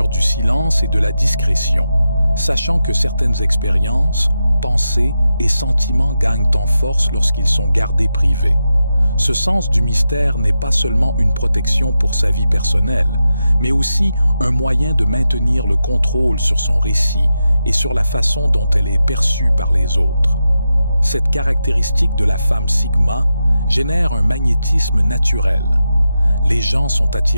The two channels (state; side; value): inverted; both; correlation -0.89